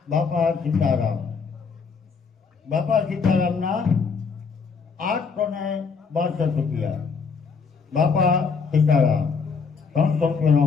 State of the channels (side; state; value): right; quieter; 5.3 dB